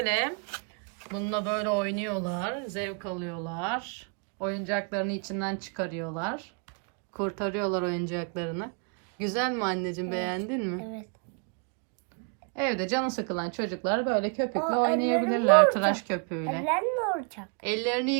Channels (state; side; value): quieter; left; 36.6 dB